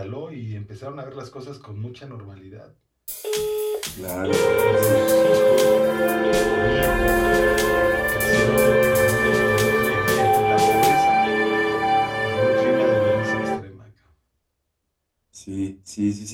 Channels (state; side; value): identical; both; correlation 1.00